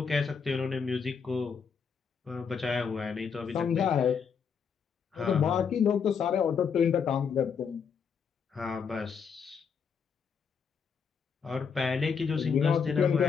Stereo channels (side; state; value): right; quieter; 6.4 dB